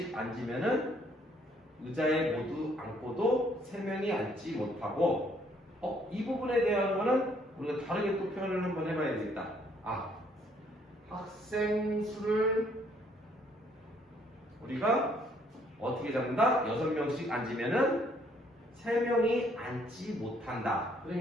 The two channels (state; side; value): normal; both; correlation 0.66